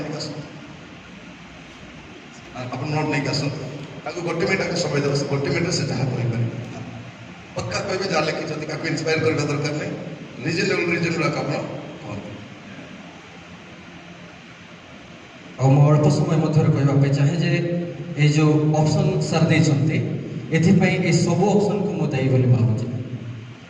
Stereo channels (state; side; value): identical; both; correlation 1.00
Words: ଟିକେ ଆସନ୍ତୁ ଆପଣ ନୋଟ୍ ନେଇକି ଆସନ୍ତୁ ତାକୁ ଗୋଟେ ମିନିଟ୍ ତାକୁ ସମୟ ଦେବ ଗୋଟେ ମିନିଟ୍ରେ ସେ ଯାହା କହିପାରିବେ ପକ୍କା କହିବେ ଯାହା ଲେଖିଛନ୍ତି ତାକୁ ଇନ୍ସପାୟାର କରିବା ଦରକାର ନାହିଁ ରିଜନେବଲ୍ ଆପଣ କୁହନ୍ତୁ। ଆଉ ମୁଁ ଅଳ୍ପ ସମୟ ମଧ୍ୟରେ କହିବା ପାଇଁ ଚାହେଁ ଯେ ଏଇ ଯେଉଁ ଅପସନ୍ ସାର୍ ଦେଇଛନ୍ତି ଏଥିପାଇଁ ଏ ସବୁ ଅପସନ୍କୁ ମୁଁ ଦାୟୀ ବୋଲି ଭାବୁଛି।